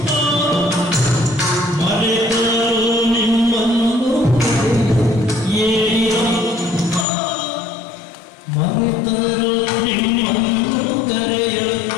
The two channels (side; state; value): right; drops out; at 7.1 s